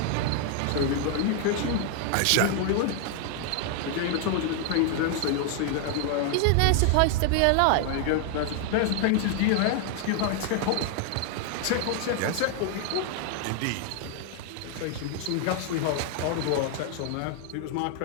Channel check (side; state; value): both; different; correlation 0.00